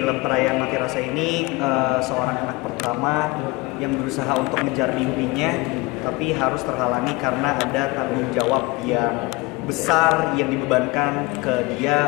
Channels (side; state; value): right; quieter; 23.5 dB